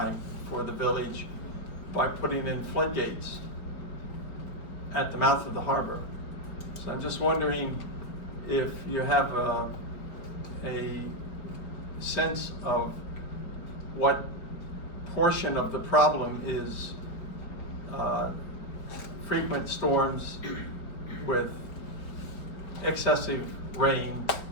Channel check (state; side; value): late; right; 4.7 ms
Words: for the village by putting in floodgates at the mouth of the harbor. So I'm just wondering if you have a sense of what portion of the problem is frequent storms with excessive rain